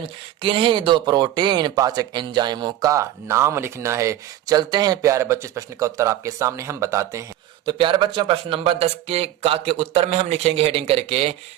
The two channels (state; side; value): quieter; left; 12.8 dB